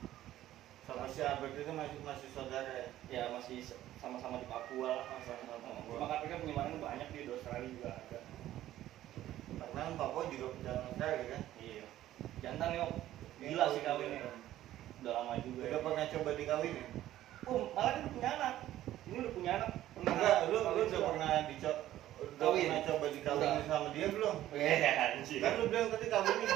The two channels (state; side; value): quieter; left; 13.6 dB